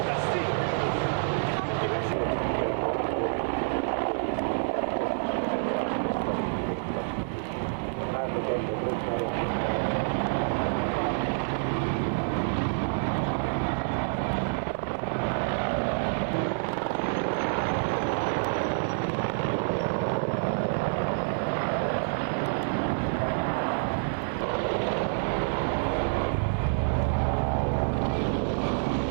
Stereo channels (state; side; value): silent; left; 59 dB below the other